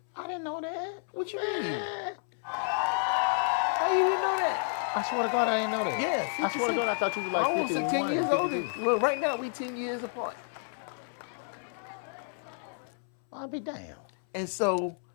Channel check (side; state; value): right; silent; 57 dB below the other